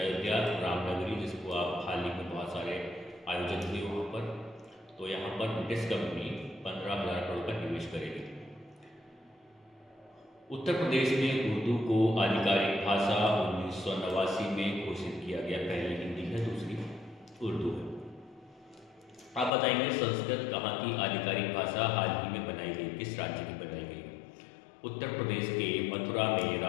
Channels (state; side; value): drops out; right; at 19.5 s